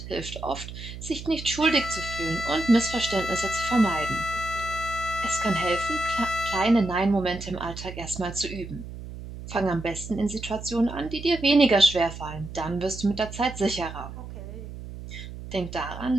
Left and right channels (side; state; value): right; noise; hum, 11 dB below the sound